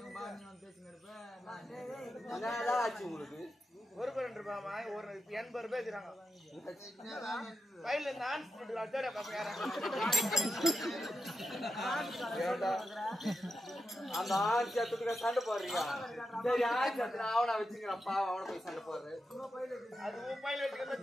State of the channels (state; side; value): normal; both; correlation 0.89